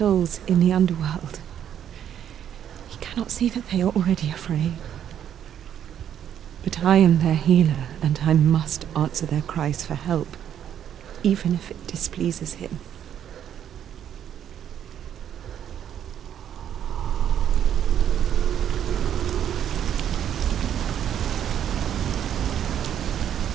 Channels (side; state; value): left; quieter; 9.7 dB